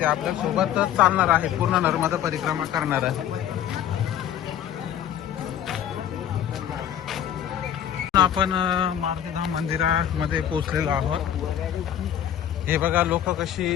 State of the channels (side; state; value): right; quieter; 10.3 dB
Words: आपल्या सोबतच चालणार आहेत, पूर्ण नर्मदा परिक्रमा करणार आहे. आपण मारुतीधाम मंदिरामध्ये पोहोचलेलो आहोत. हे बघा, लोक